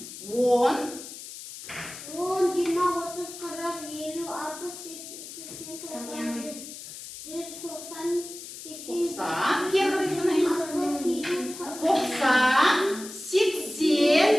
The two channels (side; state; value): left; noise; hiss, 12 dB below the sound